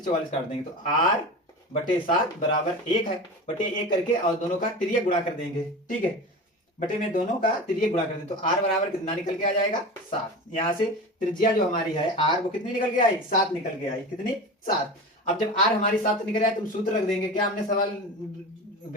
44 काट देंगे, तो R/7 बराबर 1 है, बटे 1 करके और दोनों का तिर्यक गुणा कर देंगे, ठीक है, बटे में दोनों का तिर्यक गुणा कर दें, तो R बराबर कितना निकल के आ जाएगा, 7। यहाँ से त्रिज्या जो हमारी है R, वो कितनी निकल के आई, 7 निकल के आई, कितनी, 7। अब जब R हमारी 7 निकल आए, तुम सूत्र रख देंगे, क्या हमने सवाल,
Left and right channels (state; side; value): normal; both; correlation 0.30